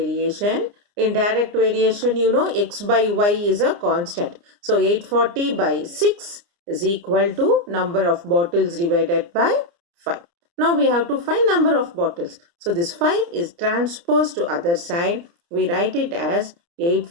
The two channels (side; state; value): left; late; 29 ms